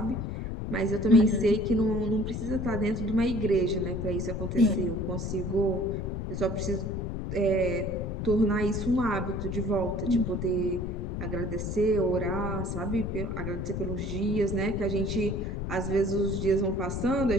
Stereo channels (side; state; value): left; noise; rumble, 3 dB below the sound